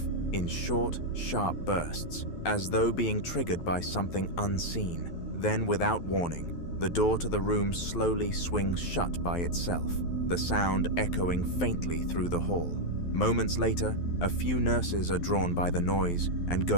in short, sharp bursts, as though being triggered by something unseen. Then, without warning, the door to the room slowly swings shut by itself, the sound echoing faintly through the hall. Moments later, a few nurses are drawn by the noise and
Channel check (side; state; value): right; late; 12 ms